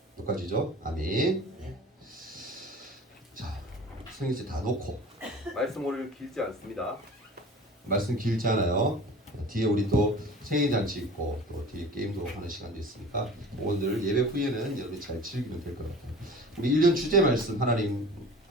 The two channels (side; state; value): both; normal; correlation 0.41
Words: 똑같이죠? 아멘. 자, 성경책 다 놓고 말씀 오늘 길지 않습니다. 말씀 길지 않아요. 뒤에 우리 또 생일잔치 있고 또 뒤에 게임도 하는 시간도 있으니까 오늘 예배 후에는 여러분이 잘 즐기면 될 것 같아요. 우리 1년 주제 말씀 하나님